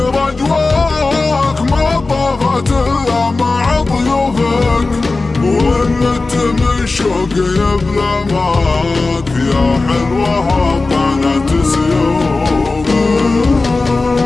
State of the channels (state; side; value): quieter; right; 3.5 dB